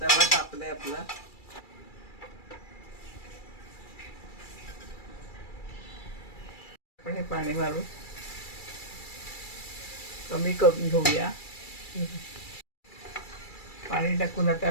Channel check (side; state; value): right; late; 2.3 ms